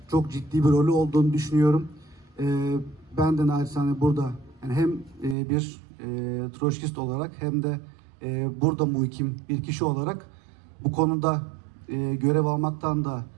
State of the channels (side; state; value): left; drops out; at 5.4 s